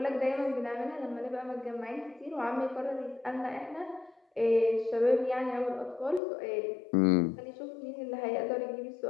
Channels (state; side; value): drops out; right; at 6.2 s